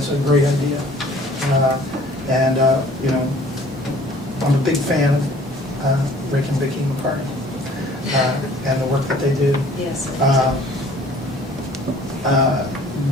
great idea. And I'm a big fan of Rick and Vicki McCartney and the work that they do. Yes.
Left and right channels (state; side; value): normal; both; correlation 0.53